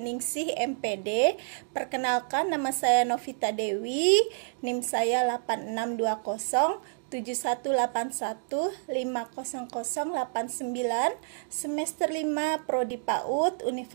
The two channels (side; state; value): left; silent; digital silence